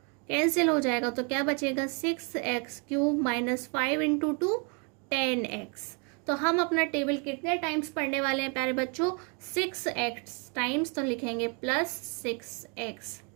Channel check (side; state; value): left; quieter; 35.8 dB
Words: कैंसिल हो जाएगा, तो क्या बचेगा 6x³ - 5 इंटू 2 10x। तो हम अपना टेबल कितने टाइम्स पढ़ने वाले हैं प्यारे बच्चों, 6x टाइम्स, तो लिखेंगे +6x,